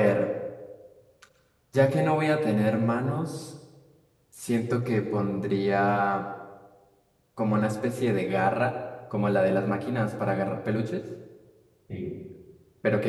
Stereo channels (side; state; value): both; identical; correlation 1.00